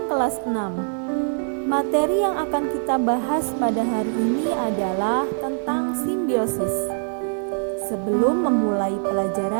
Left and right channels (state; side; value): silent; left; digital silence